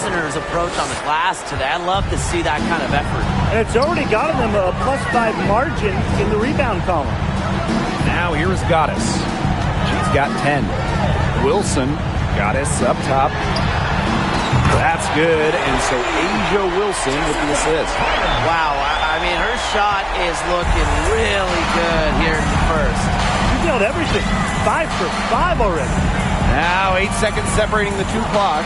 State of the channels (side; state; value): both; identical; correlation 1.00